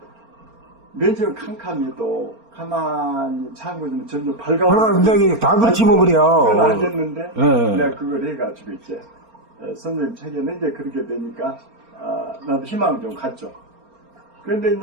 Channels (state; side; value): late; left; 4.3 ms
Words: 맨 처음 캄캄해도 가만히 참고는 점점 밝아오고. 굉장히 다 그렇지 뭐 그래요. 그건 알겠는데, 내가 그걸 해가지고 이제, 선생님 책에는 이제 그렇게 되니까, 나도 희망을 좀 갖죠. 그런데